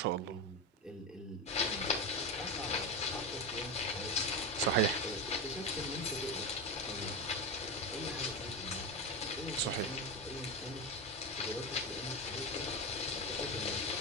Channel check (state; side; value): normal; both; correlation 0.16